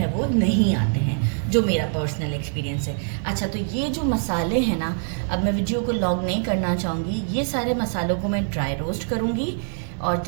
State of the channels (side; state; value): left; silent; digital silence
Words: वो नहीं आते हैं, जो मेरा पर्सनल एक्सपीरियंस है। अच्छा, तो ये जो मसाले हैं ना, अब मैं वीडियो को लॉन्ग नहीं करना चाहूँगी। ये सारे मसालों को मैं ड्राई रोस्ट करूँगी और